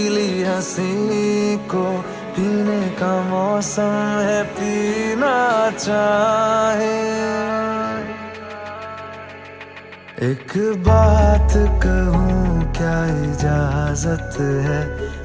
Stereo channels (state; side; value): identical; both; correlation 1.00